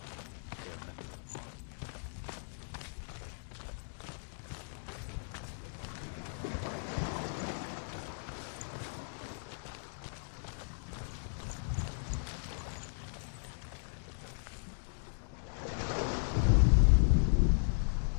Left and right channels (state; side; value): silent; right; 54 dB below the other